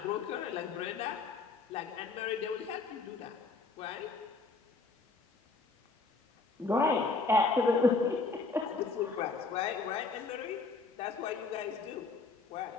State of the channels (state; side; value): quieter; right; 4.0 dB